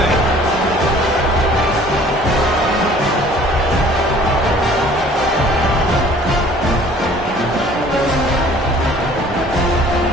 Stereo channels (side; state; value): both; normal; correlation 0.52